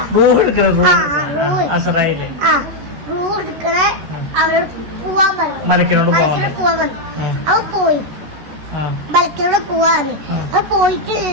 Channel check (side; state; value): left; late; 13 ms